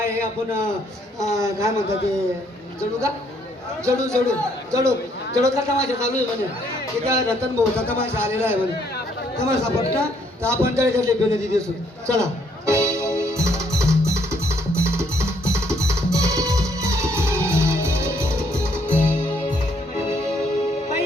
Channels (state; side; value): normal; both; correlation 0.68